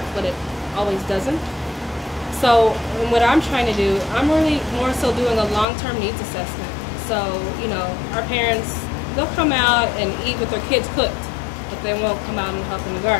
but it always doesn't. So what I'm trying to do, I'm really more so doing a long-term needs assessment. So, our parents, they'll come out and eat what their kids cooked, but they won't come out and help in the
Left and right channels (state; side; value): drops out; right; at 5.7 s